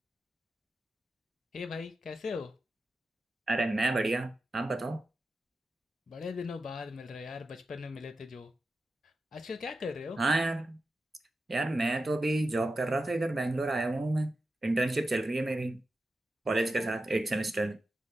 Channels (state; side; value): normal; both; correlation 0.91